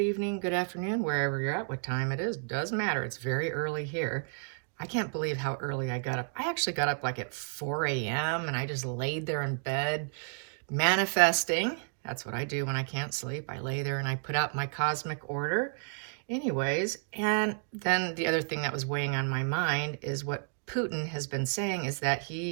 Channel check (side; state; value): left; silent; 57 dB below the other